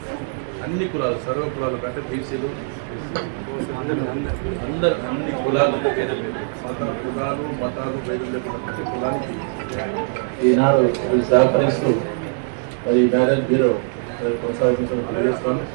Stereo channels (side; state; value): left; silent; digital silence